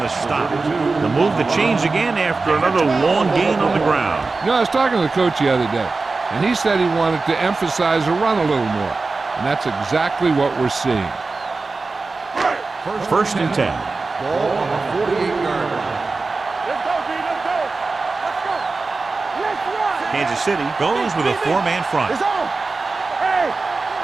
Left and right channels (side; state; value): left; quieter; 3.9 dB